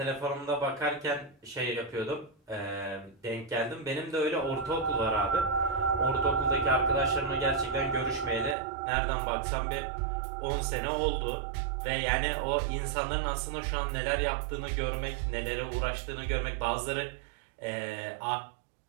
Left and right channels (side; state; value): left; drops out; at 8.6 s